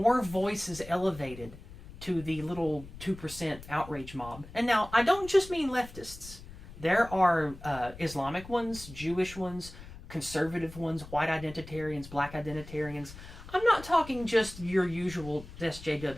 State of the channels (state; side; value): noise; left; rumble, 16 dB below the sound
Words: voices elevated to the little 2% outrage mob. And now, I don't just mean leftists. There are Islamic ones, Jewish ones, conservative ones, white identitarians, black identitarians. I'm not talking just your usual